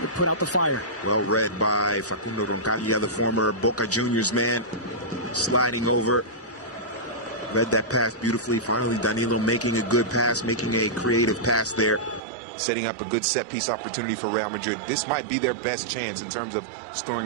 put out the fire. Well read by Facundo Roncaglia, the former Boca Juniors man, sliding over. Read that pass beautifully. Finally, Danilo making a good pass, making a creative pass there, setting up a good set-piece opportunity for Real Madrid. This might be their best chance in terms of scoring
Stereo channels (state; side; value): drops out; left; at 12.2 s